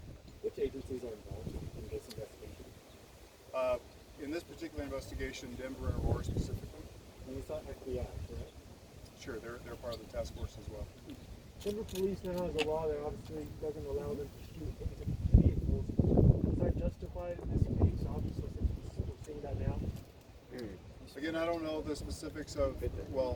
Which agencies are involved in this investigation? In this particular investigation, Denver and Aurora specifically. And it's not FBI, correct? Sure, they're part of the task force as well. Denver police now has a law that obviously doesn't allow them to shoot into vehicles. Is that justified in this case? Obviously, since we're seeing that now. Again, I don't know the specifics of,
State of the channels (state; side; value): identical; both; correlation 1.00